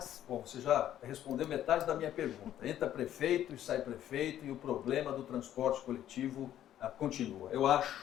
Bom, você já respondeu metade da minha pergunta. Entra prefeito e sai prefeito e o problema do transporte coletivo continua. Eu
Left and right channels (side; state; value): right; quieter; 11.6 dB